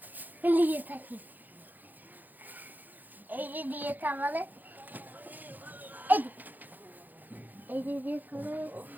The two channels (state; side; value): late; left; 0.085 ms